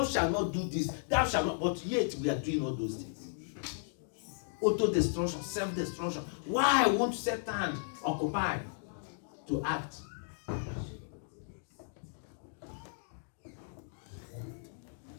shalt not do this, thou shalt not, but yet we are doing all those things. Auto-destruction, self-destruction. Why won't Satan occupy to act?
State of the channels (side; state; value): right; silent; digital silence